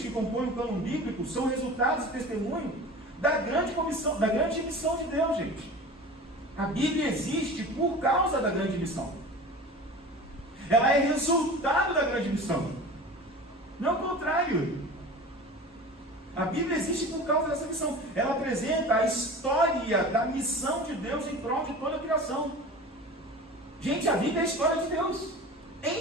que compõem o cânon bíblico são resultados e testemunho da grande comissão, da grande missão de Deus, gente. A Bíblia existe por causa da grande missão. Ela é resultado da grande missão. Não o contrário. A Bíblia existe por causa dessa missão. Ela apresenta a história da missão de Deus em prol de toda a criação. Gente, a Bíblia é a história de Deus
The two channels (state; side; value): normal; both; correlation 0.36